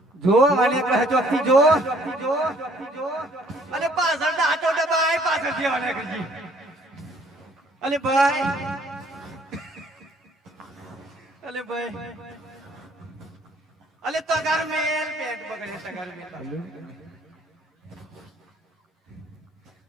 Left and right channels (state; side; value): normal; both; correlation 0.61